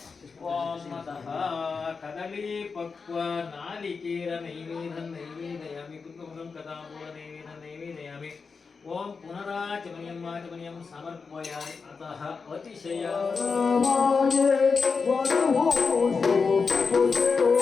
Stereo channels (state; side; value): quieter; right; 5.0 dB